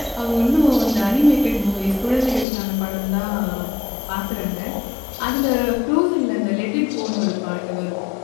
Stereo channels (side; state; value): right; drops out; at 2.5 s